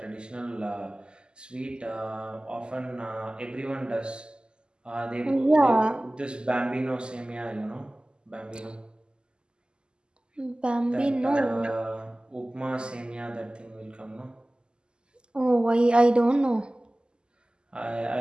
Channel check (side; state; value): left; late; 0.048 ms